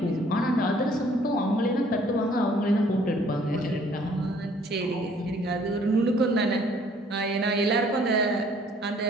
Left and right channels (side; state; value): both; normal; correlation 0.59